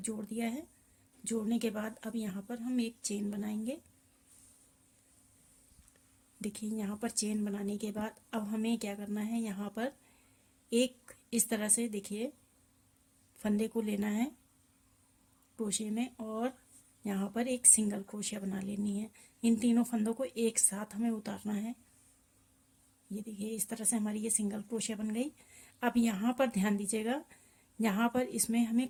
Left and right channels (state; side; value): identical; both; correlation 1.00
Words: दिया है। जोड़ने के बाद अब यहाँ पर हम एक चेन बनाएंगे। देखिए यहाँ पर चेन बनाने के बाद अब हमें क्या करना है, यहाँ पर एक इस तरह से देखिए फंदे को लेना है क्रोशिया में और यहाँ पर एक सिंगल क्रोशिया बना लेनी है। इन तीनों फंदों को एक साथ हमें उतारना है। ये देखिए इस तरह से हमारी ये सिंगल क्रोशिया बन गई। अब यहाँ पर ध्यान दीजिएगा, यहाँ पर इसमें हमें